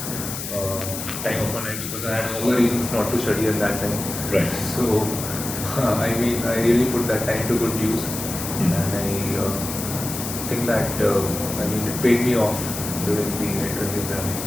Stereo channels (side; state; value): left; noise; hiss, 6 dB below the sound